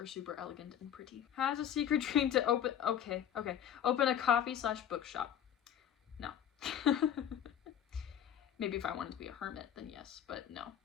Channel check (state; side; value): quieter; right; 9.6 dB